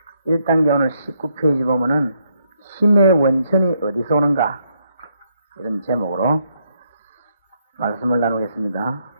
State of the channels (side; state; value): both; inverted; correlation -0.75